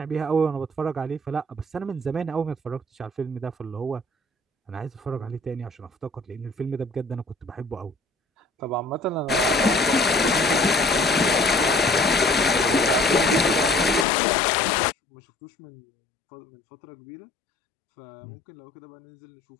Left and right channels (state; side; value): drops out; right; at 14.1 s